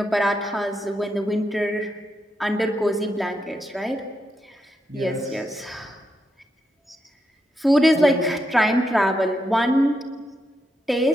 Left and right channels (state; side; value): normal; both; correlation 0.83